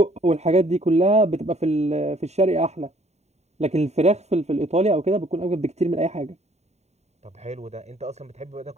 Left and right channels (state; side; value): late; left; 0.32 ms